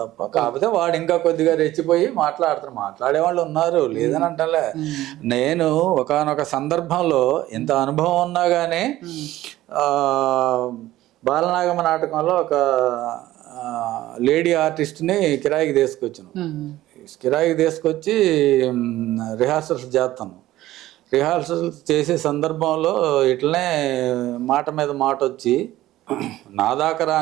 కాకపోతే వాడు ఇంకా కొద్దిగా రెచ్చిపోయి మాట్లాడే వాళ్ళు ఉన్నారు, లేదని అంటలే. నేను ఒకానొక సందర్భంలో ఇంత అనుభవం ఉన్నా కానీ బాలనాగమ్మ నాటకంలో ఒక లేడీ ఆర్టిస్ట్ని కిరాయికి తీసుకొచ్చాను. కిరాయికి తీసుకొచ్చి రిహార్సల్స్ చేస్తాను. రిహార్సల్ చేసే సందర్భంలో ఇట్లనే మాట మీద మాట వచ్చి నా దాకా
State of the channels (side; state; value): left; quieter; 15.4 dB